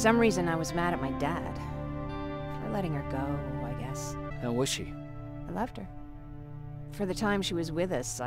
reason, I was mad at my dad. For letting her go, I guess. How was she? I loved her. For the time she was with us,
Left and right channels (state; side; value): identical; both; correlation 1.00